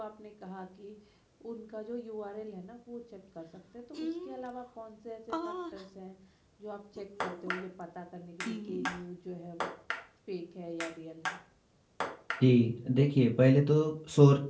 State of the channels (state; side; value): identical; both; correlation 1.00